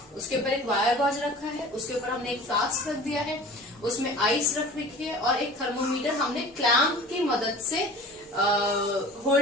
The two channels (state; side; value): normal; both; correlation 0.41